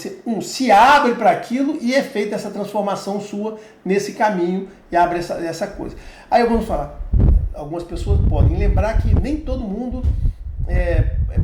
se abre para aquilo e é feita essa transformação sua nesse caminho e abre essa coisa. Aí vamos falar, algumas pessoas podem lembrar que nem todo mundo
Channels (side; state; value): both; identical; correlation 1.00